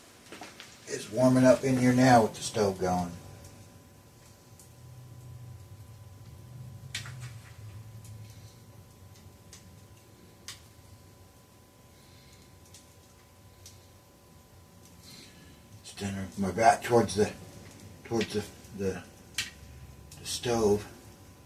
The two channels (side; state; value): both; identical; correlation 1.00